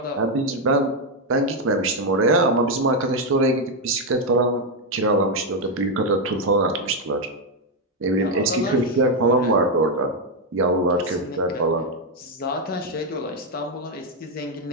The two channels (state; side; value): normal; both; correlation 0.04